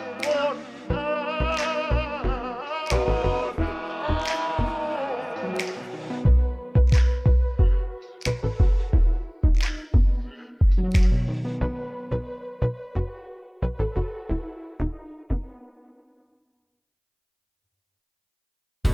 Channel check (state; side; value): identical; both; correlation 1.00